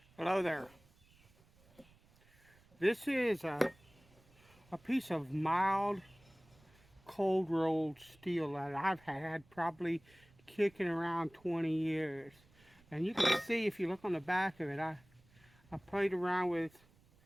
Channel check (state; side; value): noise; right; rumble, 29 dB below the sound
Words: Hello there. This is a piece of mild cold rolled steel that I've had probably kicking around 20 years. And you can see if you look on the back of it, I played around